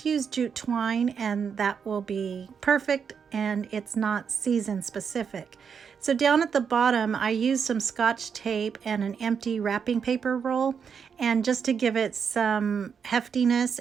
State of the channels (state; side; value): quieter; left; 6.7 dB